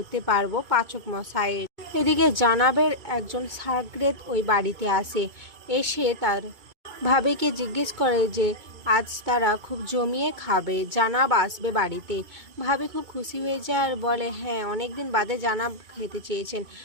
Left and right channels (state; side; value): late; left; 2.2 ms